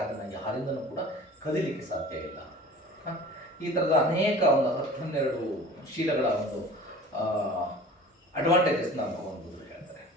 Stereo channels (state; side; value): normal; both; correlation 0.42